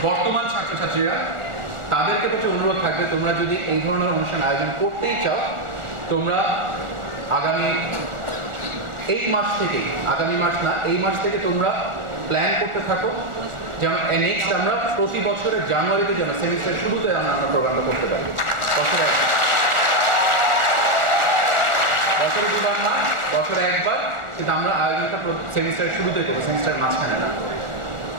বর্তমান ছাত্রছাত্রীরা, তাদেরকে প্রতি অনুরোধ থাকবে, তোমরা যদি এই ধরনের অনুষ্ঠান আয়োজন করতেই চাও, তোমরা আগামী মাস থেকে, আগামী মাস না, এই মাস থেকে তোমরা প্ল্যান করতে থাকো যেন নেক্সট আমরা প্রতি বছরের জানুয়ারিতে যেন সেমিস্টার শুরুতে আমরা প্রোগ্রামটা করতে পারি। বছরে 2বার না, বছরে 1বার, কিন্তু আমরা আয়োজনটা সেমিস্টারের শুরুতে করবো, সেমিস্টারের মাঝখানে না,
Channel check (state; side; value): late; left; 1.4 ms